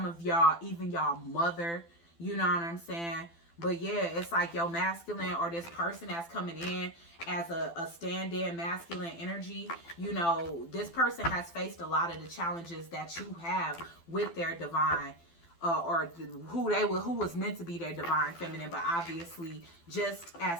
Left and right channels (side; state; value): right; late; 12 ms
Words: of y'all, even y'all mother, you know what I'm saying? But yeah, it's like your masculine, or this person that's coming in as a stand-in masculine energy, you know, this person has faced a lot of the challenges that you have with their divine, who was meant to be their divine feminine. But obviously, just